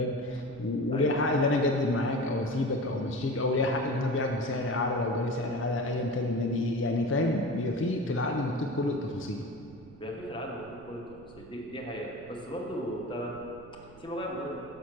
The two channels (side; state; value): right; noise; rumble, 21 dB below the sound